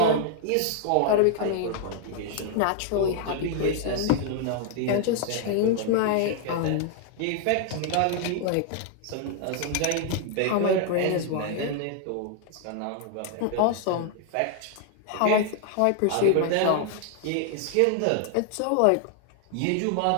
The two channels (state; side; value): different; both; correlation 0.00